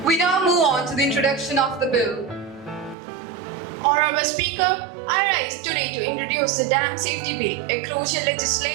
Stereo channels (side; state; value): left; drops out; at 3.0 s